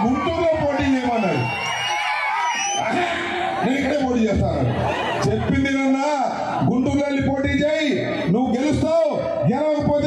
గుంటూరులో పోటీ చేయమన్నాడు. నేను ఇక్కడే పోటీ చేస్తాను చెప్పింది నన్నా, గుంటూరులో వెళ్ళి పోటీ చేయి, నువ్వు గెలుస్తావు,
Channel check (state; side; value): identical; both; correlation 1.00